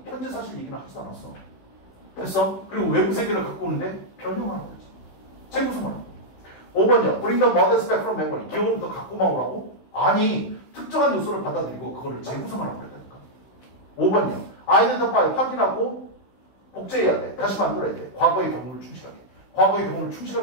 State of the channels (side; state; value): right; late; 16 ms